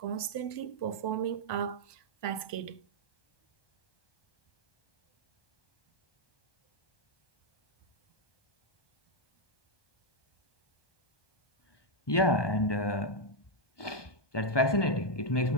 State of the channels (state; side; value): late; right; 1.2 ms